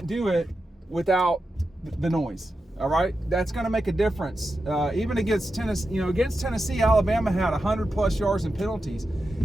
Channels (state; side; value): normal; both; correlation 0.90